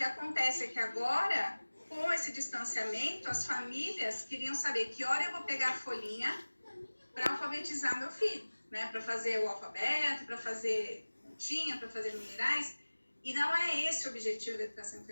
acontece é que agora, com esse distanciamento, as famílias queriam saber que hora eu vou pegar a folhinha para alfabetizar meu filho, né? Para fazer o alfabeto, para fazer continha, para fazer numerais. E não é esse o objetivo da educação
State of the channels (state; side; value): inverted; both; correlation -1.00